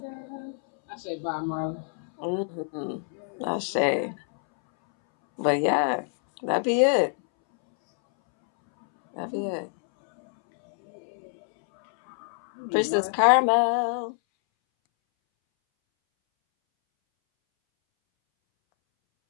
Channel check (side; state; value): right; silent; 61 dB below the other